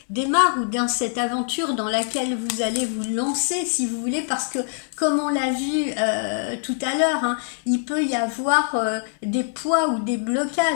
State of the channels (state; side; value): silent; right; 63 dB below the other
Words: démarre, ou dans cette aventure dans laquelle vous allez vous lancer, si vous voulez, parce que comme on l'a vu tout à l'heure, hein, il peut y avoir des poids ou des